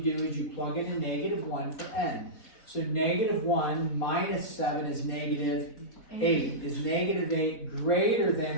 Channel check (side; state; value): right; late; 4.0 ms